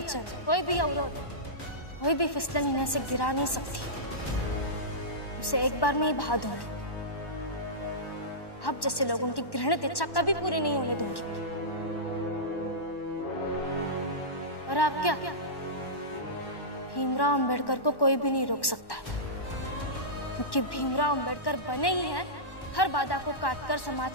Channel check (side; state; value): right; late; 1.1 ms